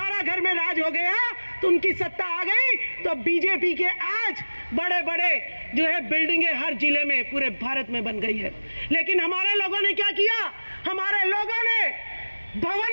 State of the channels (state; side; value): inverted; both; correlation -1.00